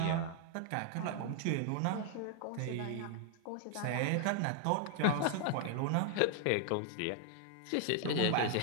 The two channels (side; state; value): both; different; correlation 0.00